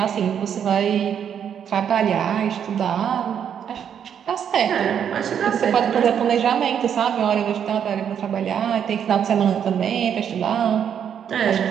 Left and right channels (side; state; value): left; quieter; 8.5 dB